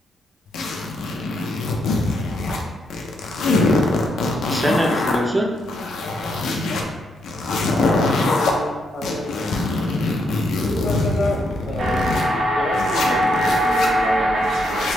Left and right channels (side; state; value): both; normal; correlation 0.78